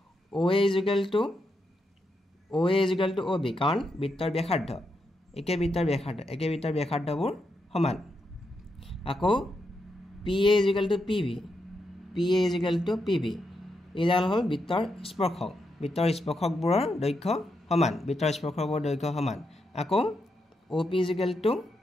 OA = OA is equal to OB কাৰণ বৃত্তৰ ব্যাসাৰ্ধ একে বৃত্তৰ ব্যাসাৰ্ধবোৰ সমান আকৌ PA is equal to PB এইডাল হ'ল বৃত্তৰ স্পৰ্শকবোৰৰ দৈৰ্ঘ্য সমান আকৌ OP is equal to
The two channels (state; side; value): normal; both; correlation 0.83